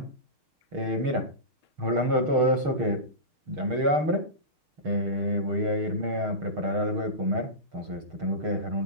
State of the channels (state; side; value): late; left; 6.5 ms